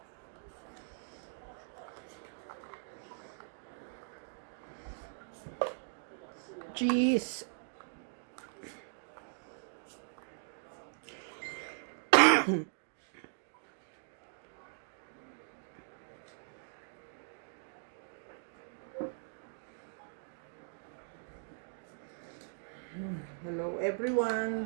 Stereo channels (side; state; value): left; silent; digital silence